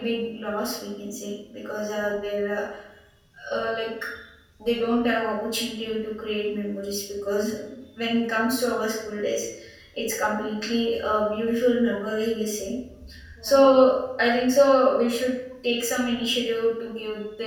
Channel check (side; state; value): both; identical; correlation 1.00